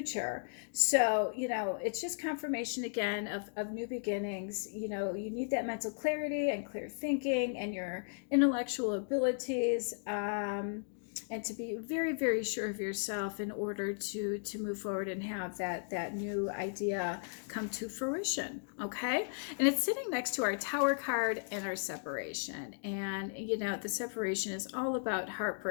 So it's just confirmation again of new beginnings. You need that mental clarity and clear thinking and your intellectual abilities, and to be very, very sure of yourself in order to move forward and have that new idea come to fruition. Okay, and it's sitting next to our Tower card and our separation. And the separation is all about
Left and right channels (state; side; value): silent; right; digital silence